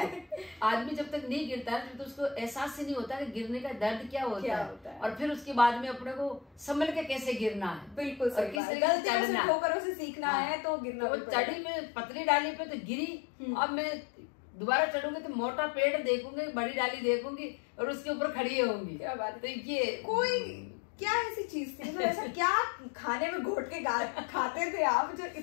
आदमी जब तक नहीं गिरता है तो उसको एहसास ही नहीं होता कि गिरने का दर्द क्या होता है, और फिर उसके बाद में अपने को संभल के कैसे गिरना है। बिल्कुल सही बात, गलतियों से ठोकरों से सीखना है तो गिरना। वो चढ़ी में पतली डाली पे तो गिरी, अब मैं दोबारा चढ़ूंगी तो मोटा पेड़ देखूंगी, बड़ी डाली देखूंगी और उसके ऊपर खड़ी होंगी। क्या बात है। तो ये कोई क्या ऐसी चीज थी, मतलब ऐसा क्या खाने में घोट के खाते थे आप जो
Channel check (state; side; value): drops out; right; at 8.6 s